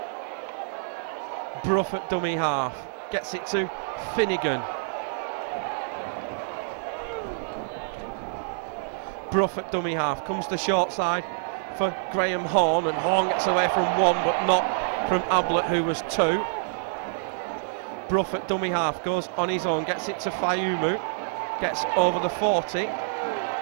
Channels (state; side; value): silent; left; digital silence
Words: Brough at dummy half, gets it to Finnegan. Brough at dummy half, comes the short side for Graham Horn, and Horn gets away from 1 but not from Ablett, who was 2. Brough at dummy half, goes on his own, gets it to Fayumu, gets over the 40.